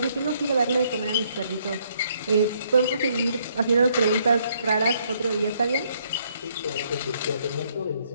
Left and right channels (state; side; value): inverted; both; correlation -0.69